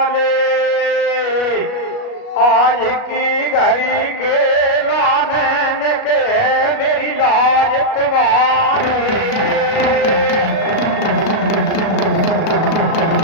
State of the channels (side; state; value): right; late; 37 ms